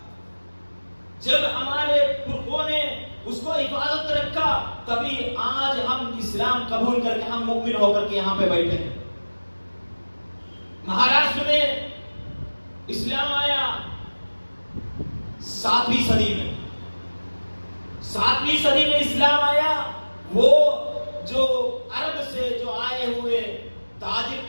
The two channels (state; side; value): inverted; both; correlation -1.00